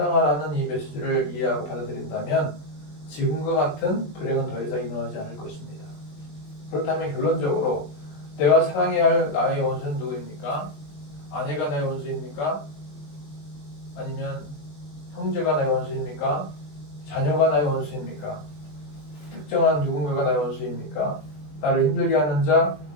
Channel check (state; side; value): late; right; 20 ms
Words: 이 메시지를 이해하고 받아들인다면 지금과 같은 불행은 더 이상 일어나지 않을 것입니다. 그렇다면 결론적으로 내가 사랑해야 할 나의 원수는 누구입니까? 아내가 나의 원수입니까? 아니면 형제가 나의 원수입니까? 자녀가 나의 원수입니까? 특정한 누군가가 나의 원수입니까? 나를 힘들게 하는 자,